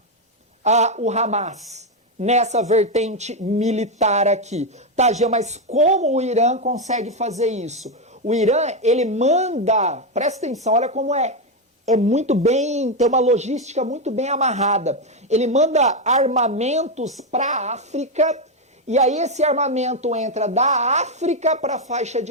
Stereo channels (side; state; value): both; normal; correlation 0.05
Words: o Hamas nessa vertente militar aqui. Tá, Jean, mas como o Irã consegue fazer isso? O Irã, ele manda, presta atenção, olha como é muito bem, tem uma logística muito bem amarrada. Ele manda armamentos para a África, e aí esse armamento entra da África para a faixa